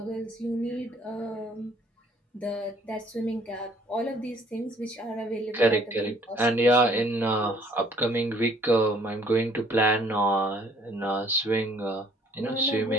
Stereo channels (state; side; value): normal; both; correlation 0.60